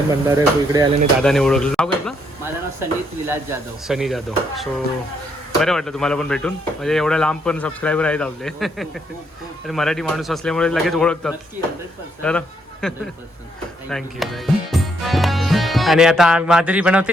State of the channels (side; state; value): both; normal; correlation 0.74